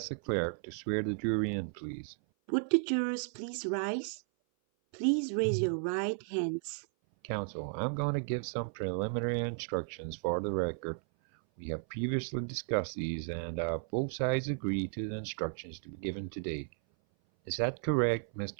the clerk to swear the jury in, please. Would the jurors please rise? Please raise your right hands. Counsel, I'm going to give some preliminary instructions for the record. We have previously discussed these, and both sides agree to the instructions to be given today. Is that correct,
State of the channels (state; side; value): silent; left; 55 dB below the other